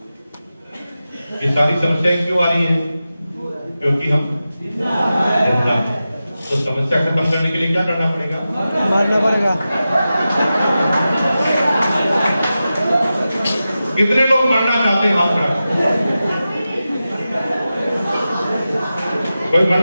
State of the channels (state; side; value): inverted; both; correlation -0.93